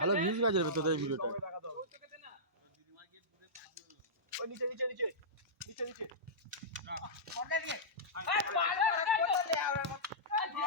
ভিউজ কাজে তোদের এই ভিডিওটা নিচে নিচে নিচে নিচে নিচে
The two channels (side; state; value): both; normal; correlation -0.16